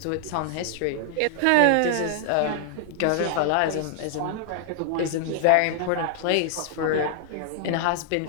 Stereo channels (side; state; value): both; different; correlation 0.00